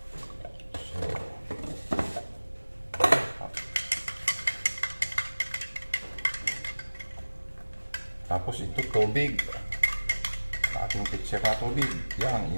So, tapos ito tubig. Ating pitcher na tubig. Yan,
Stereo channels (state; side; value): inverted; both; correlation -1.00